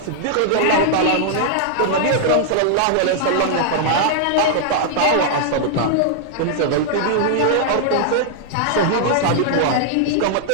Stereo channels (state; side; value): different; both; correlation -0.01